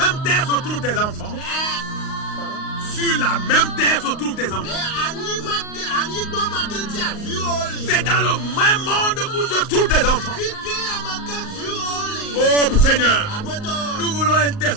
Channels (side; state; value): right; late; 38 ms